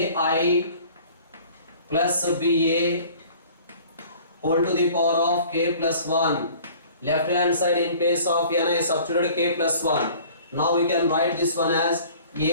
plus BA whole to the power of k plus 1. Left hand side in place of n I substituted k plus 1. Now we can write this one as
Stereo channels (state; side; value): inverted; both; correlation -0.49